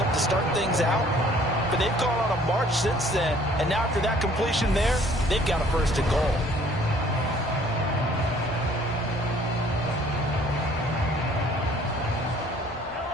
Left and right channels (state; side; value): normal; both; correlation 0.57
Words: to start things out, but they've gone on a march since then, and now after that completion there, they've got a first and goal.